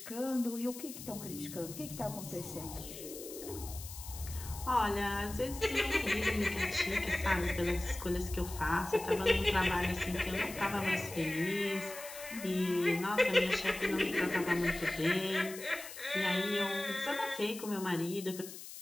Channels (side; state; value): left; noise; hiss, 12 dB below the sound